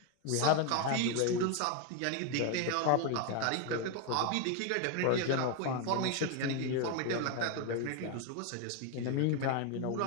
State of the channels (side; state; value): both; different; correlation 0.01